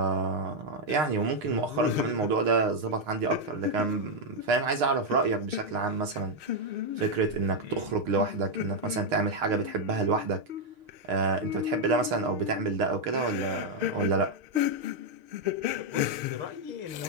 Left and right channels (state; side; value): late; left; 6.5 ms